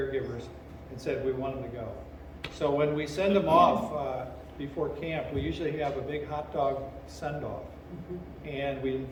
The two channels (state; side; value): identical; both; correlation 1.00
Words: and said we want them to go. So when we send them off before camp, we usually have a big hot dog send-off. And we